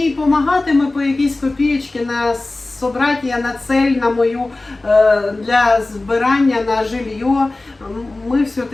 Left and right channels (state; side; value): quieter; right; 3.0 dB